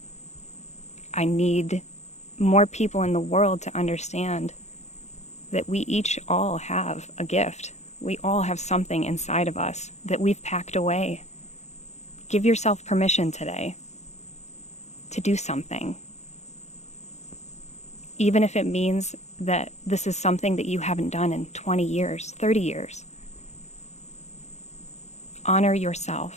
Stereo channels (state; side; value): late; right; 0.33 ms